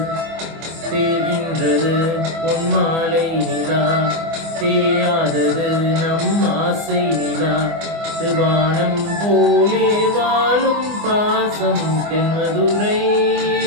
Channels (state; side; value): late; left; 24 ms